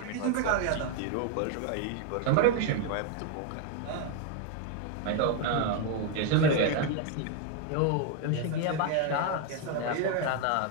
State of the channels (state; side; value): different; both; correlation 0.01